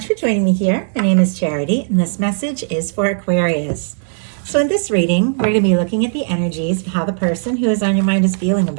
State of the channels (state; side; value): silent; left; digital silence